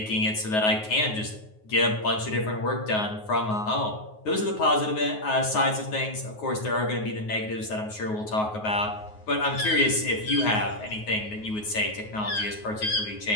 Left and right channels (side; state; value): right; late; 9.5 ms